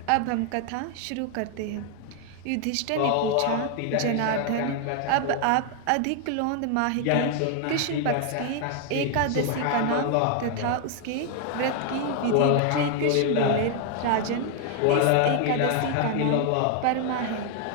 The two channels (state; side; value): different; both; correlation 0.00